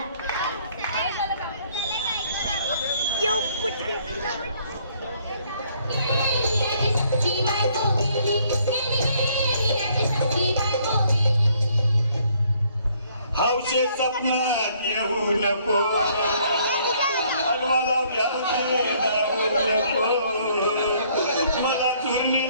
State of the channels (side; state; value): both; inverted; correlation -0.65